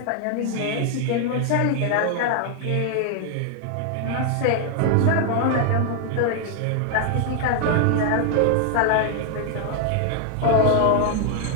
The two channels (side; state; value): both; different; correlation 0.00